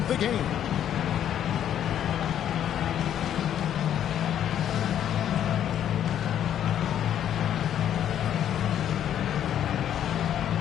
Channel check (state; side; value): quieter; right; 10.2 dB